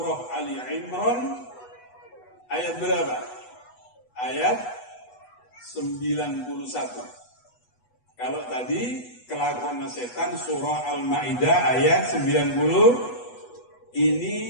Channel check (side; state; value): right; late; 8.1 ms